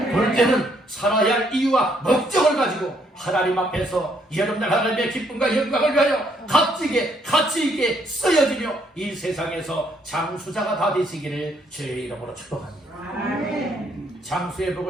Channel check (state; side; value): normal; both; correlation 0.70